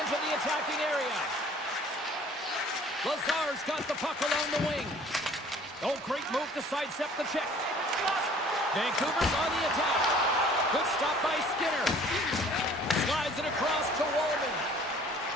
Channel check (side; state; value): both; normal; correlation 0.52